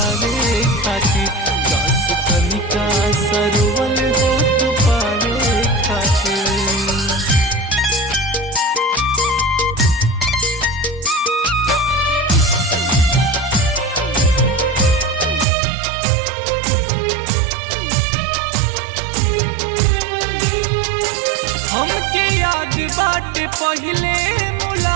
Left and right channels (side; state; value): left; drops out; at 15.5 s